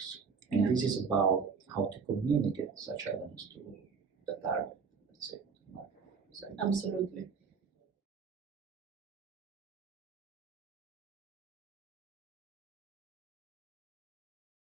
And this is about how to communicate such elements to the target, let's say. Absolutely.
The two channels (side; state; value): left; quieter; 5.6 dB